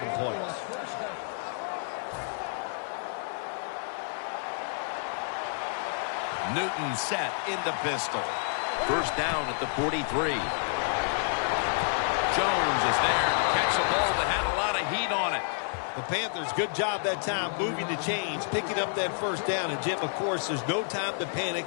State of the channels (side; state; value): right; silent; 58 dB below the other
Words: points. Newton set in the pistol. First down at the 43. Jones is there to catch a ball that had a lot of heat on it. The Panthers, good job that time moving the chains, picking up that first down. And, Jim, of course, there's no time to panic